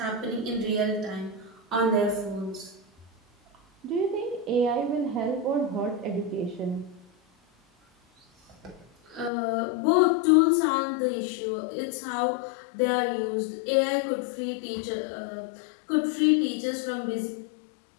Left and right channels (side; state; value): right; drops out; at 9.3 s